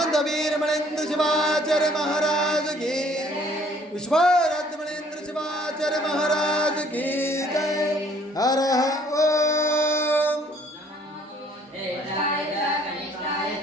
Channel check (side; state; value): both; normal; correlation 0.59